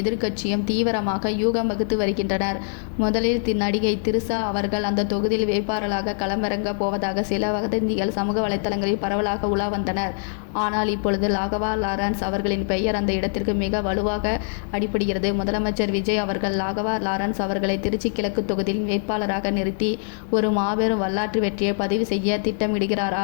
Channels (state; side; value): silent; right; digital silence